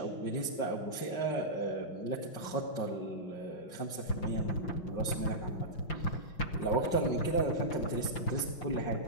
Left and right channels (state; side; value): late; right; 5.9 ms